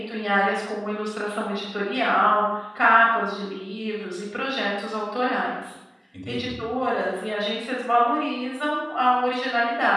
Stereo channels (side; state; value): both; identical; correlation 1.00